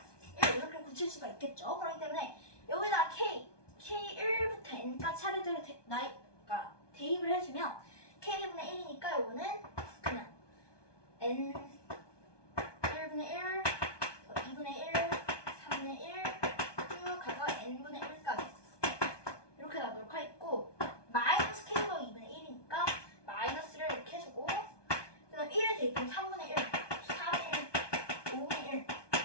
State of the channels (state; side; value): late; right; 1.2 ms